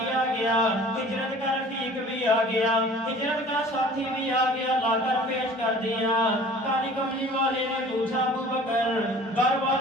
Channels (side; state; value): both; normal; correlation 0.47